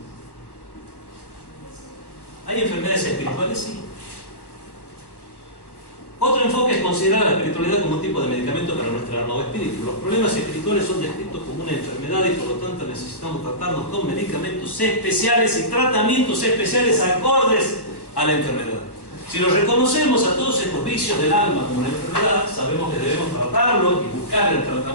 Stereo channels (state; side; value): late; right; 1.1 ms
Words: ¿Hay enfermedades espirituales? Sí. Otro enfoque es considerar la espiritualidad como un tipo de medicamento para nuestra alma o espíritu. Los problemas espirituales son descritos como una enfermedad y por lo tanto necesitamos tratarnos con medicamentos especiales y tratamientos especiales acordes a la enfermedad. Si lo reconocemos a todos estos vicios del alma como una enfermedad, sabemos que debemos tratarlo y buscar el